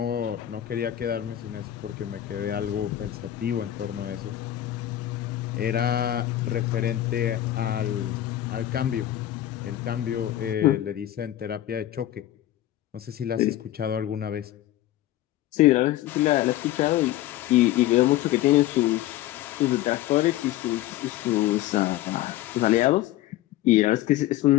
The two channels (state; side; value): quieter; right; 13.7 dB